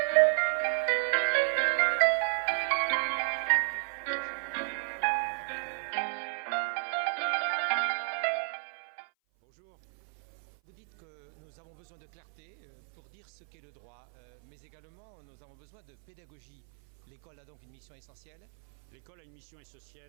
jours, les 400 000 inscrits. Pour que le numérique... Et de protéger les libertés individuelles. Bonjour. Vous dites que nous avons besoin de clarté pour dire ce qu'est le droit, mais également nous avons besoin de pédagogie. L'école a donc une mission essentielle. L'école a une mission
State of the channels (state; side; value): silent; left; 56 dB below the other